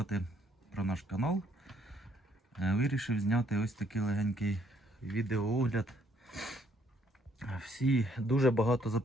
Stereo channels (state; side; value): normal; both; correlation 0.67